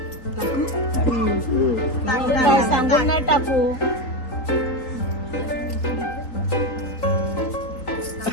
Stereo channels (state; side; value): late; right; 3.8 ms